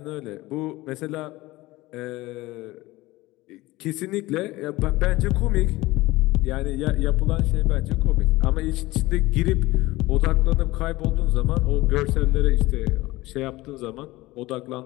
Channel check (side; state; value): right; quieter; 19.5 dB